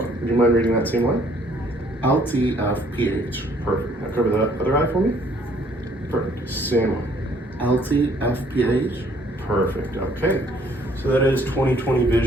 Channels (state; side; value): normal; both; correlation 0.62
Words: Would you mind reading that same line? LT of pH. Perfect. Now cover the other eye for me. Perfect. Same one. LT of pH. Perfect. Okay. So that is 20/20